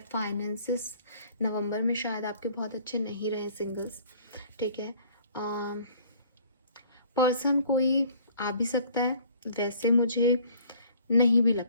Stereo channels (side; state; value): both; inverted; correlation -0.55